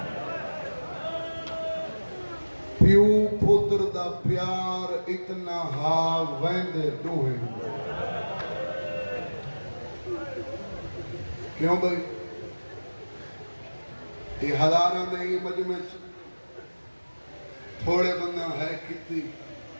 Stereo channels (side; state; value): both; inverted; correlation -1.00